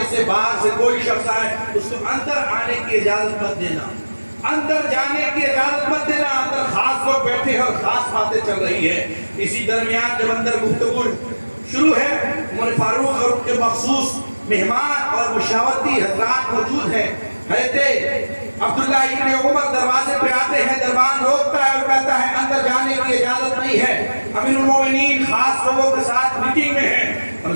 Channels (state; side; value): inverted; both; correlation -1.00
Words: سے باہر سے کوئی شخص آئے اس کو اندر آنے کی اجازت مت دینا، اندر جانے کی اجازت مت دینا، اندر خاص لوگ بیٹھے ہیں اور خاص باتیں چل رہی ہے۔ اسی درمیان جب اندر گفتگو شروع ہے، عمر فاروق اور ان کے مخصوص مہمان اور مشاورتی حضرات موجود ہیں۔ حضرت عبداللہ ابن عمر دروازے پہ آتے ہیں، دربان روکتا ہے اور کہتا ہے اندر جانے کی اجازت نہیں ہے، امیر المومنین خاص لوگوں کے ساتھ میٹنگ میں ہیں۔ اور